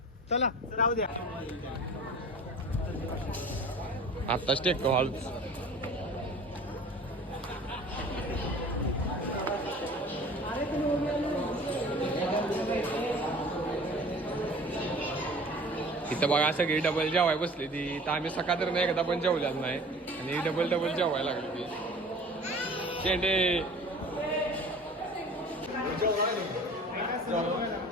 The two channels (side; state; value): both; normal; correlation 0.44